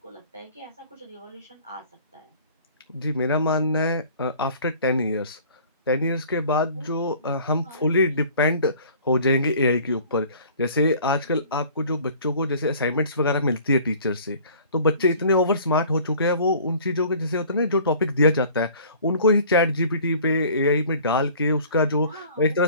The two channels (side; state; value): both; inverted; correlation -0.49